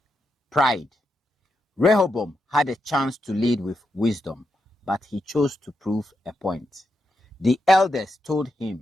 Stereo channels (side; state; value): both; normal; correlation 0.85